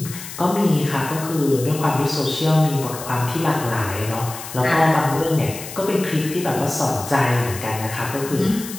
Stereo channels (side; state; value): left; noise; hiss, 11 dB below the sound